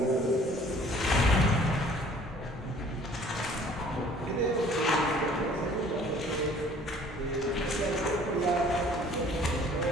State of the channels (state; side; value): normal; both; correlation 0.54